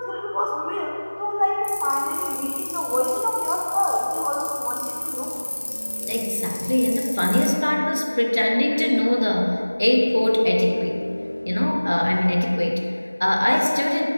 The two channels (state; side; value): inverted; both; correlation -1.00